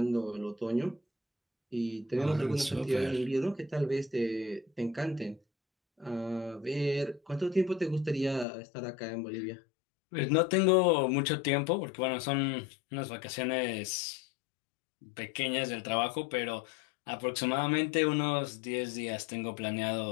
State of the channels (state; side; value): drops out; right; at 8.5 s